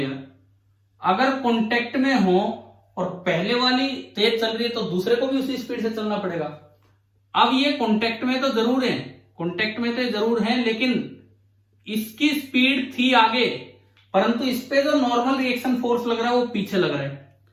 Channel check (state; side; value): identical; both; correlation 1.00